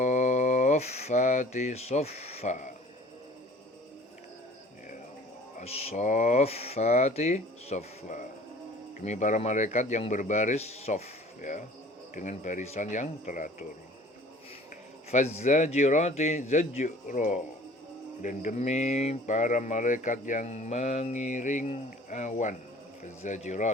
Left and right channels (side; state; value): both; normal; correlation 0.49